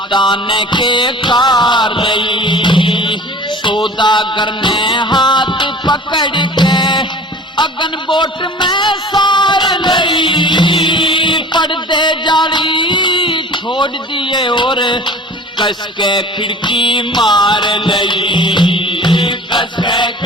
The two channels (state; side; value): normal; both; correlation 0.42